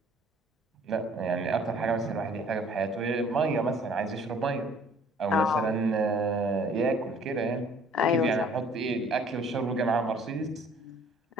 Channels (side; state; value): both; normal; correlation 0.55